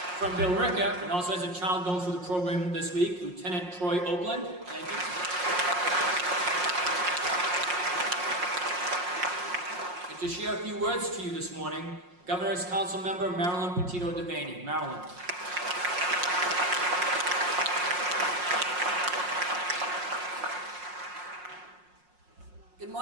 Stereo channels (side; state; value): left; late; 5.6 ms